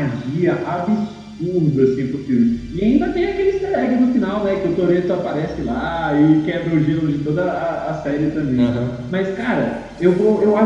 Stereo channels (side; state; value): both; identical; correlation 1.00